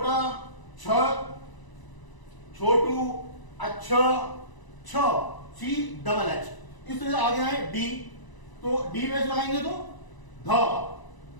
छ, छोटू, अच्छा, छ, सी डबल एच। इस तरह से आगे आए डी, तो डी में लगाएंगे तो ध,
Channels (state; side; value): late; right; 1.0 ms